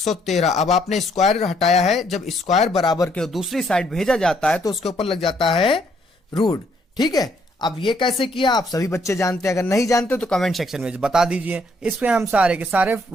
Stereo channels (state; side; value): normal; both; correlation 0.69